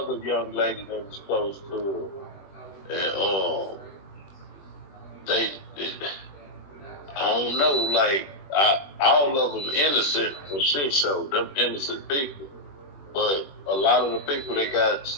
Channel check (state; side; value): late; right; 21 ms